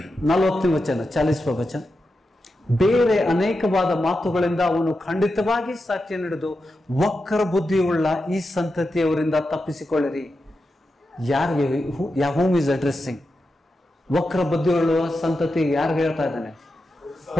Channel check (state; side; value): normal; both; correlation 0.89